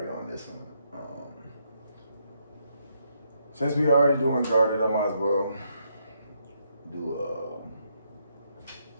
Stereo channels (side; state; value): both; inverted; correlation -0.76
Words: on this one. Since we already doing Guarded, I might as well do